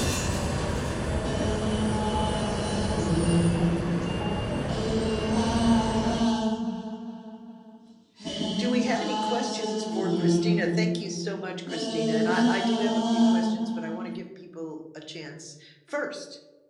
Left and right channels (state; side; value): identical; both; correlation 1.00